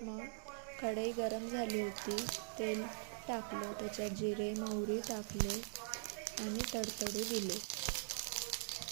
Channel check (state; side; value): silent; left; digital silence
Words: मग कढई गरम झाली होती. तेल टाकलं. त्याच्यात जिरे मोहरी टाकले आणि तडतडू दिले.